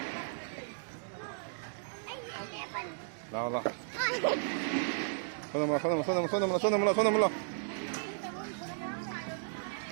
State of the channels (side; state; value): left; silent; digital silence